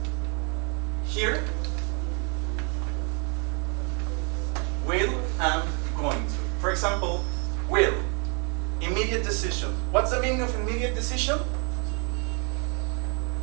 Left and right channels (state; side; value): quieter; left; 36.6 dB